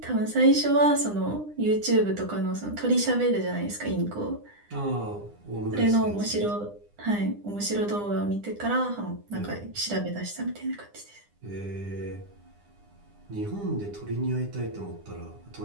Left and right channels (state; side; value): late; left; 9.9 ms